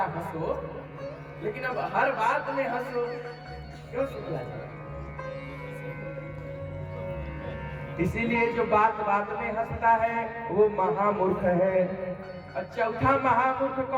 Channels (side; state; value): both; identical; correlation 1.00